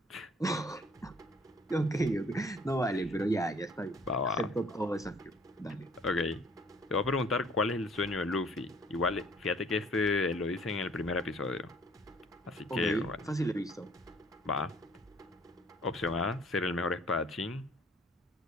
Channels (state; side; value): normal; both; correlation 0.56